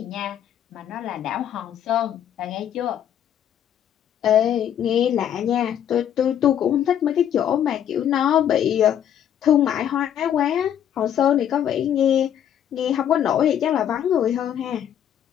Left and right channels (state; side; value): quieter; right; 9.9 dB